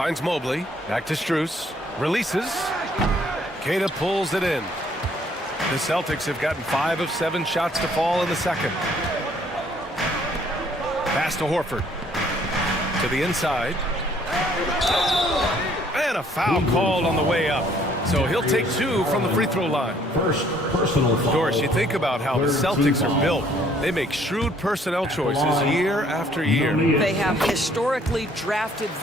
Mobley. Back to Strus. Releases. Queta pulls it in. The Celtics have gotten 5 of 7 shots to fall in the second. Pass to Horford. To the inside. And a foul called on the way up. So he'll take 2 from the free throw line. First personal foul. Doris, you think about how the Celtics are built. They make shrewd personnel choices year after year. They have historically drafted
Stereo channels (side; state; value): both; normal; correlation 0.62